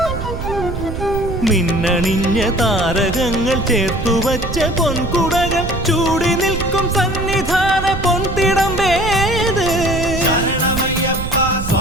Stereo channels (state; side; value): noise; right; rumble, 6 dB below the sound